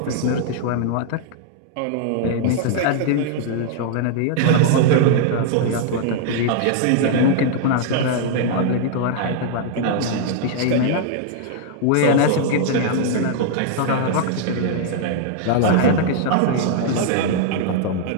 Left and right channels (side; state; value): both; different; correlation -0.01